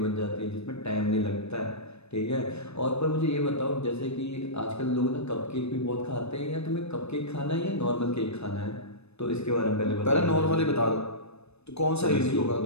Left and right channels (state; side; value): late; right; 0.80 ms